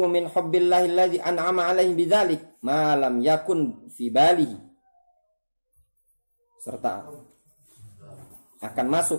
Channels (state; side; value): inverted; both; correlation -1.00